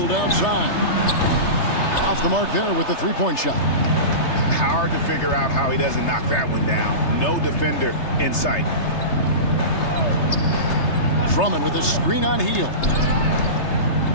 outside. Off the mark there with the three-point shot. Hard to figure out how he doesn't knock that one down. No defender in sight. Drummond with a screen on Hield.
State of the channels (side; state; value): right; late; 3.3 ms